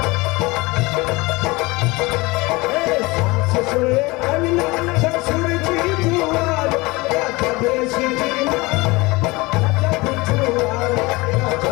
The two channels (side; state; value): right; quieter; 23.2 dB